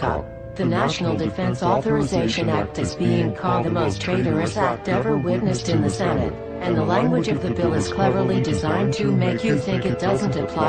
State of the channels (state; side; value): identical; both; correlation 1.00